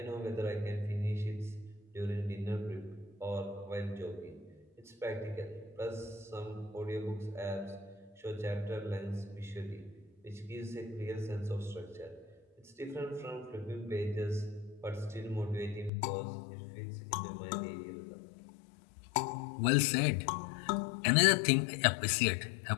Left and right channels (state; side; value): drops out; right; at 15.9 s